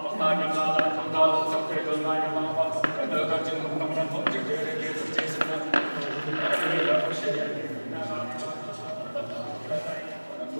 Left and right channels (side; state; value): both; inverted; correlation -1.00